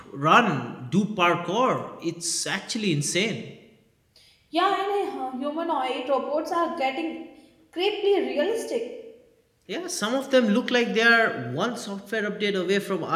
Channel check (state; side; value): identical; both; correlation 1.00